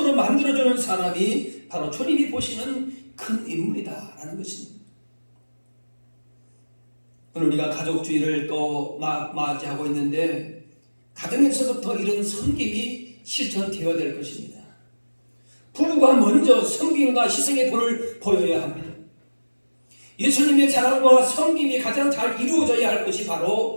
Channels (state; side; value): inverted; both; correlation -1.00